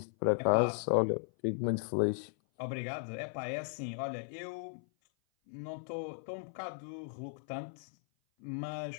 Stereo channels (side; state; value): right; silent; 54 dB below the other